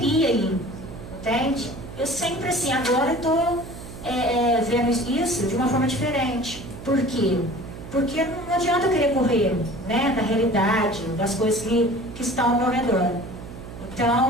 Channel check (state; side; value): noise; right; hum, 13 dB below the sound